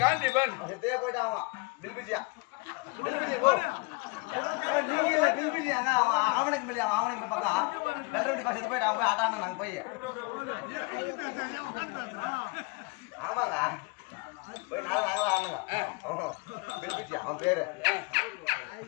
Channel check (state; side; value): quieter; right; 29.1 dB